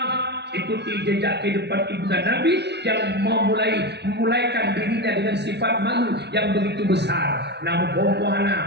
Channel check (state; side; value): late; left; 0.50 ms